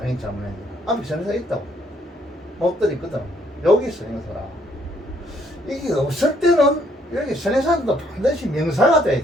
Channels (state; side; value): normal; both; correlation 0.68